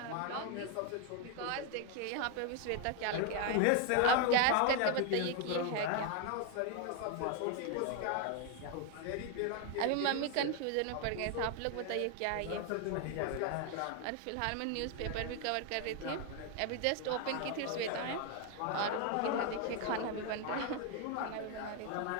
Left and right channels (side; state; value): both; different; correlation 0.01